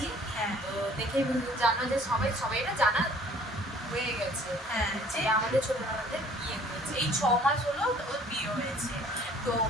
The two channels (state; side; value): normal; both; correlation 0.54